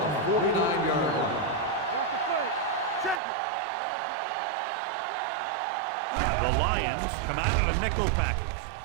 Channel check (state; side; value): drops out; left; at 3.2 s